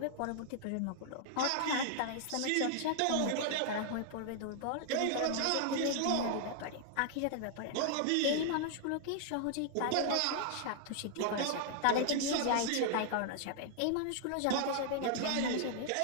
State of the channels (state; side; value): different; both; correlation -0.01